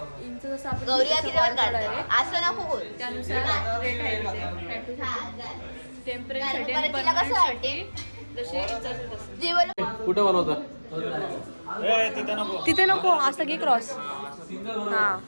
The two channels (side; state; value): both; inverted; correlation -1.00